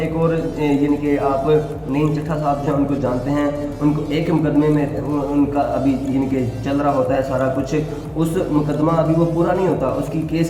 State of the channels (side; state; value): both; identical; correlation 1.00